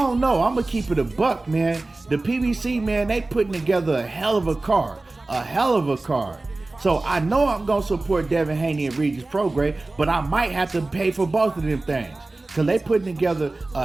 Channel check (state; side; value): quieter; left; 3.1 dB